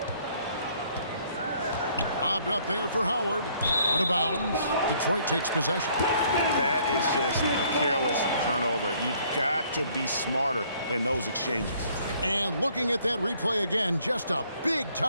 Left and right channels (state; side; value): inverted; both; correlation -0.63